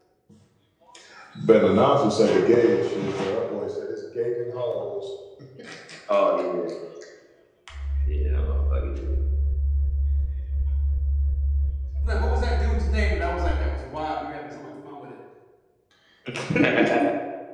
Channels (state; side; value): identical; both; correlation 1.00